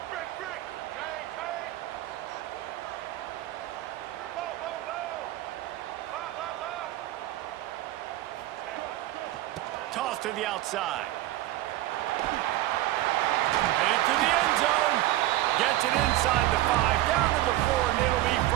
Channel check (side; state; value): left; quieter; 15.5 dB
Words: Toss to the outside. Headed to the end zone. Gets it inside the 5, down to the 4, and it'll be